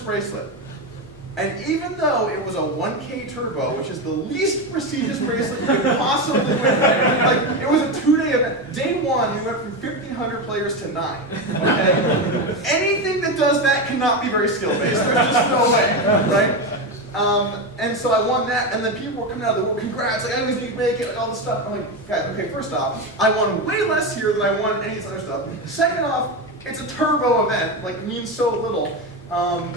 bracelet. And even though it was a 1K turbo, which is the least prestigious bracelet you could possibly win, like it was a 2-day event. Day 1, we went from 1,500 players to 9. Okay? Anything that does that cannot be very skill-based. There's just no way, right? And so I won that, and then people were coming out of the world, congrats, like I always need to make it, like all this stuff. I'm like, guys, okay, first off, I won way less here than I won any of this other stuff. Second off, it's a turbo event, like it means so little.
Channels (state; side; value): normal; both; correlation 0.15